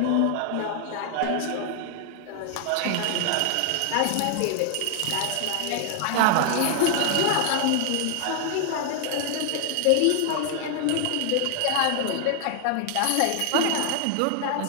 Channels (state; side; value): different; both; correlation 0.00